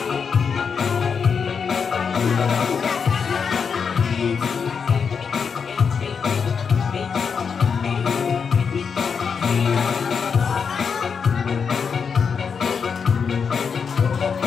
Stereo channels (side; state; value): right; quieter; 6.1 dB